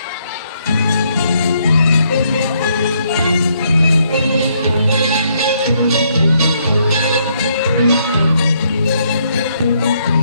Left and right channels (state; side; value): inverted; both; correlation -0.72